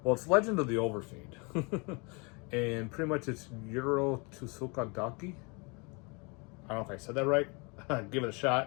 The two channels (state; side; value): quieter; right; 30.5 dB